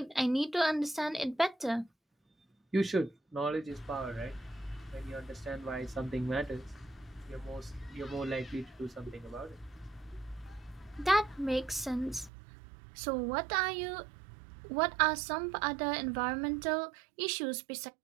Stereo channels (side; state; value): left; drops out; at 12.3 s